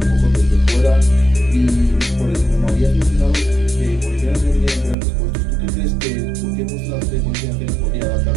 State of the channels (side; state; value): left; drops out; at 5.0 s